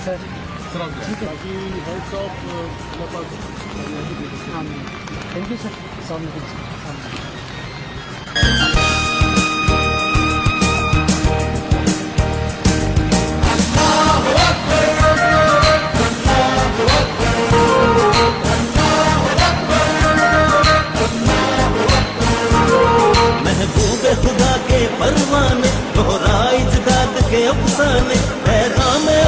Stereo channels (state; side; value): identical; both; correlation 1.00